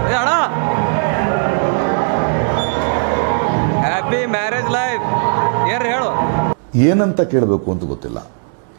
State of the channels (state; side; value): silent; left; 66 dB below the other